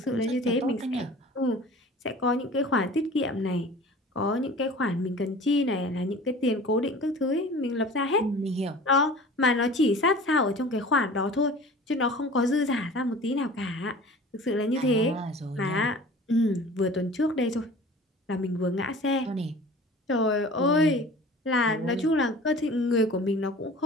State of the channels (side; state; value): both; normal; correlation 0.42